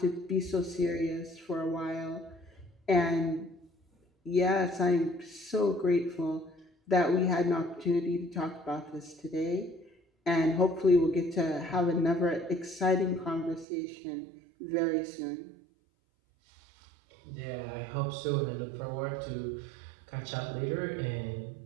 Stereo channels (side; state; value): left; drops out; at 13.7 s